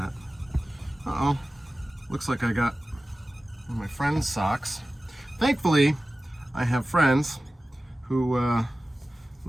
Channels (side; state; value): both; normal; correlation 0.96